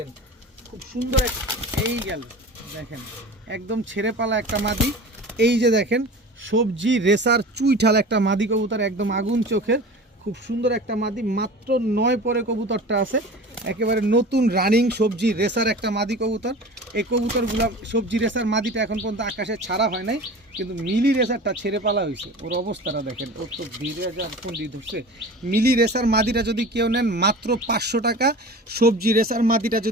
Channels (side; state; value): both; normal; correlation 0.37